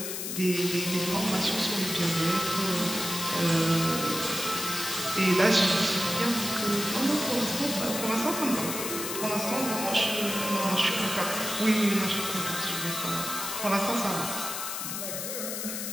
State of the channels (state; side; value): noise; left; hiss, 4 dB below the sound